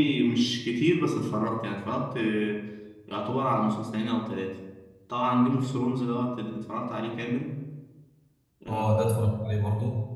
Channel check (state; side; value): identical; both; correlation 1.00